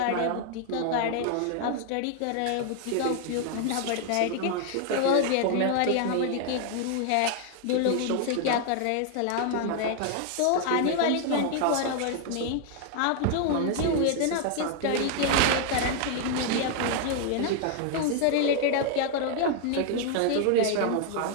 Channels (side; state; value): both; different; correlation 0.00